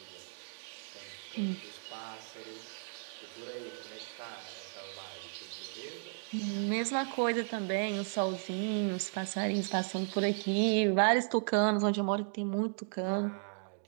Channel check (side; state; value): left; silent; digital silence